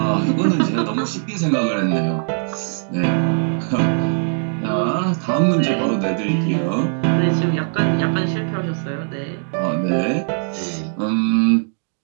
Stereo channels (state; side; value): silent; left; digital silence